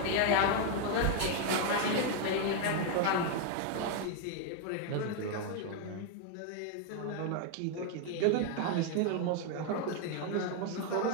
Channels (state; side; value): different; both; correlation 0.01